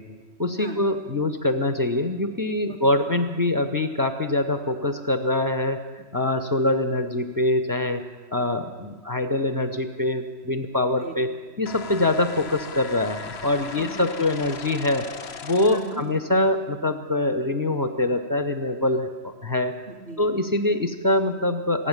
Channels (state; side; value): late; left; 3.1 ms